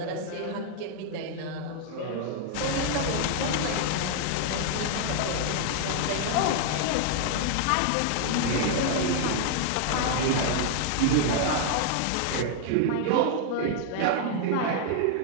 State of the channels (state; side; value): different; both; correlation 0.00